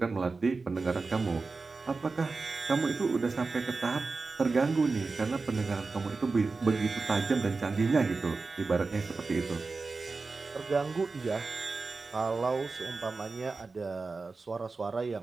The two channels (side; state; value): left; quieter; 4.0 dB